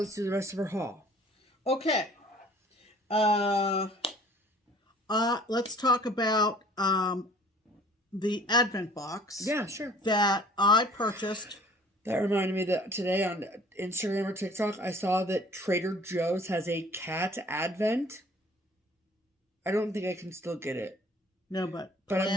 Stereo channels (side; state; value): both; normal; correlation 0.52